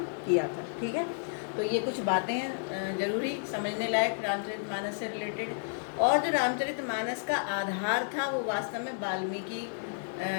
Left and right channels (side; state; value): right; silent; digital silence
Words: किया था, ठीक है। तो ये कुछ बातें हैं जरूरी समझने लायक रामचरितमानस से रिलेटेड। और जो रामचरितमानस का आधार था वो वास्तव में वाल्मीकि